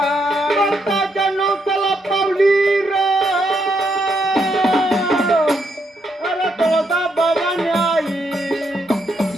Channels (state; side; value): normal; both; correlation 0.77